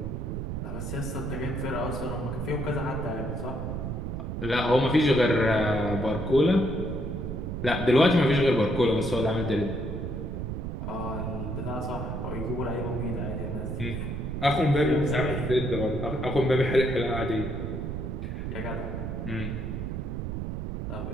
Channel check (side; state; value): right; noise; rumble, 4 dB below the sound